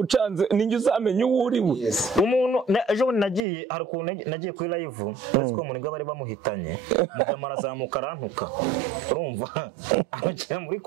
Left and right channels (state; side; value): drops out; left; at 3.4 s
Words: ninjye uzamenye uwo uriwe umuntu ejo nagiye hari ukuntu nagiye kuri live uretse ko umuntu bari bamuhitanye mujama arazamuka arantuka urumva abakira muri